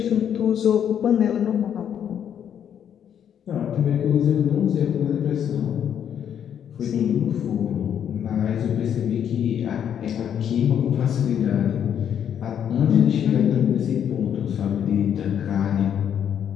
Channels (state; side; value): quieter; right; 9.0 dB